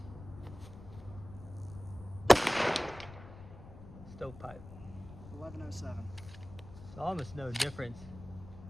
Stovepipe. 1107. It's almost no difference.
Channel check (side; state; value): left; noise; rumble, 15 dB below the sound